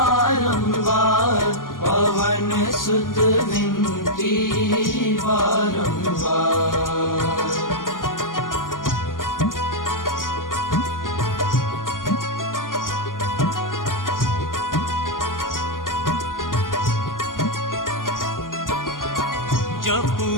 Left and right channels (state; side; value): late; right; 0.90 ms